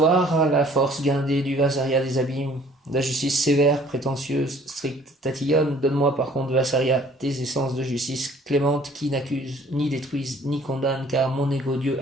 la force guindée du Vassaria des abîmes, la justice sévère, prétentieuse, stricte, tatillonne. Donne-moi par contre, Vassaria, tes essences de justice clémente qui n'accusent, ni détruisent, ni condamnent, car mon égo Dieu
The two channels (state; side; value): normal; both; correlation 0.56